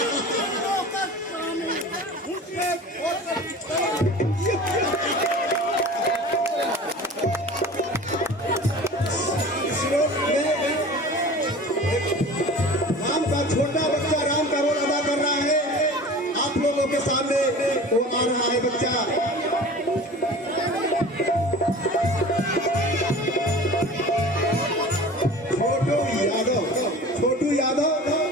राम का छोटा बच्चा राम का रोल अदा कर रहा है आप लोगों के सामने वो आ रहा है बच्चा छोटू यादव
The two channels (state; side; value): normal; both; correlation 0.39